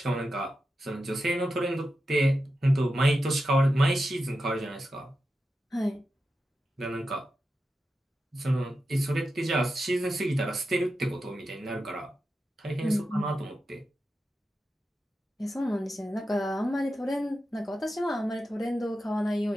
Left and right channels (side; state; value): both; normal; correlation 0.90